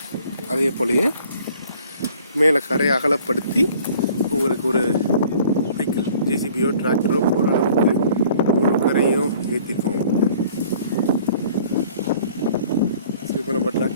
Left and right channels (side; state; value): both; inverted; correlation -0.54